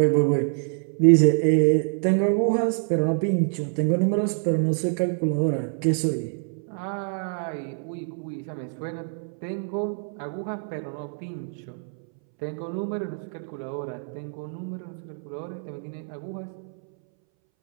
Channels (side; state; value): left; silent; 61 dB below the other